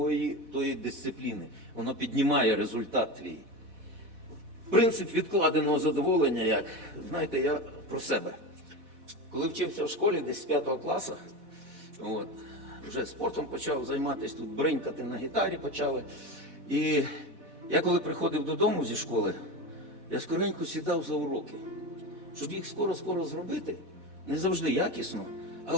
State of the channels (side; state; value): left; late; 4.1 ms